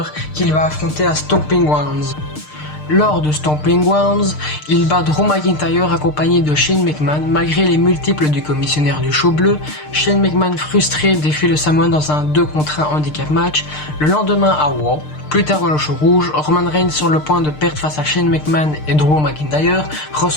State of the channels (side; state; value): right; late; 6.6 ms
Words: qu'il va affronter à Stomping Grounds. Lors de Stomping Grounds, il bat Drew McIntyre accompagné de Shane McMahon malgré les multiples du commissionnaire du show bleu. Shane McMahon frustré défie le Samoan dans un 2 contre 1 handicap match. Le lendemain à Raw, plus tard dans le show rouge, Roman Reigns sur le point de perdre face à Shane McMahon et Drew McIntyre